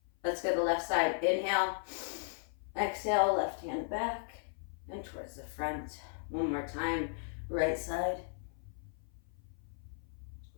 Let's go to the left side. Inhale. Exhale, left hand back, and towards the front. One more time, right side.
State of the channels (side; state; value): right; silent; 54 dB below the other